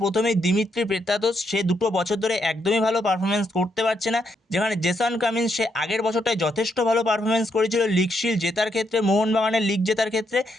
প্রথমেই দিমিত্রি পেত্রাতোস, সে 2 বছর ধরে একদমই ভালো পারফরমেন্স করতে পারছে না। যেখানে জেসন কামিন্স, সে আগের বছরটায় যথেষ্ট ভালো পারফরমেন্স করেছিল লিগ শিল্ড জেতার ক্ষেত্রে, মোহনবাগানের লিগ জেতার ক্ষেত্রে,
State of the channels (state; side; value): normal; both; correlation 0.78